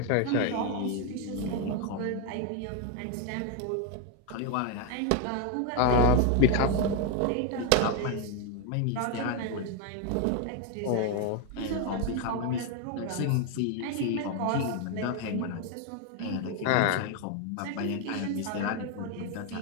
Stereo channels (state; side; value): different; both; correlation 0.01